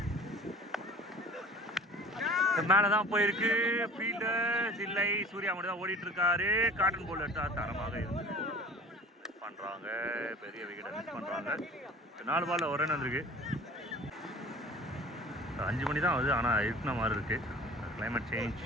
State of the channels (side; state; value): both; normal; correlation 0.43